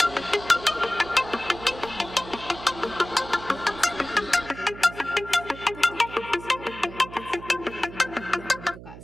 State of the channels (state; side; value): noise; right; hum, 15 dB below the sound